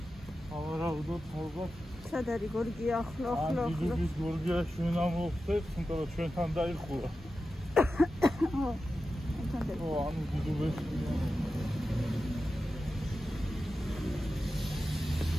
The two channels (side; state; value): both; normal; correlation 0.92